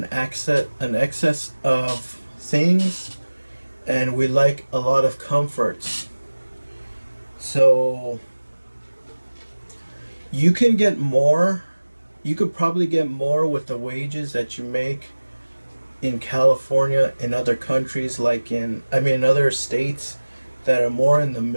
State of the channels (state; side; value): inverted; both; correlation -1.00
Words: excess of things, and we like a lot of comforts. So you could probably get more with the wages that you make in California, in other countries, like in other states that are more in the